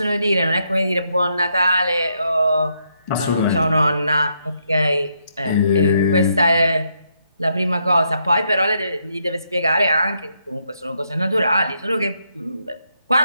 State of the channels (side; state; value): both; inverted; correlation -0.77